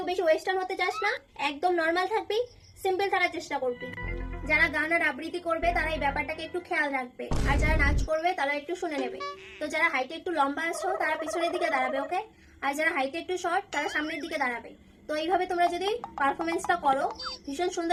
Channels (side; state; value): both; identical; correlation 1.00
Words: বেশি ওয়েস্টার্ন হতে চাস না, একদম নর্মাল থাকবি, সিম্পল থাকার চেষ্টা করবি। যারা গান আর আবৃত্তি করবে তারা এই ব্যাপারটাকে একটু খেয়াল রাখবে, আর যারা নাচ করবে তারা একটু শুনে নেবে। তো যারা হাইটে একটু লম্বা আছো তারা পিছনের দিকে দাঁড়াবে, ওকে? আর যারা হাইটে একটু শর্ট তারা সামনের দিকে দাঁড়াবে। তো এইভাবে তোমরা যদি পারফরমেন্সটা করো ভীষণ